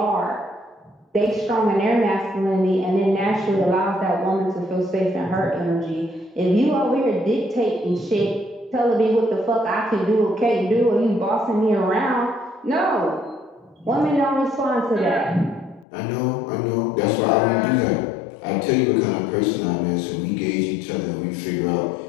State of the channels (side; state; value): right; drops out; at 15.9 s